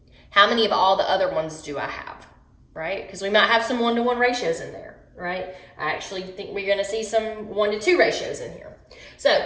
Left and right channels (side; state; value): both; identical; correlation 1.00